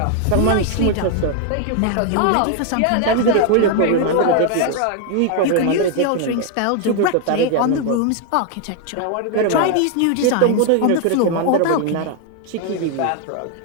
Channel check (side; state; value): both; different; correlation 0.00